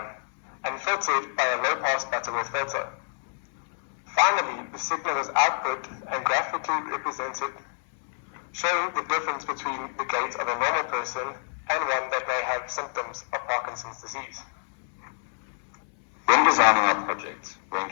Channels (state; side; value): silent; right; 60 dB below the other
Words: and filtered by a low-pass Butterworth filter. Finally, the signal was output and graphically represented, showing the difference between the gait of a normal person and one that may have symptoms of Parkinson's disease. When designing our project, we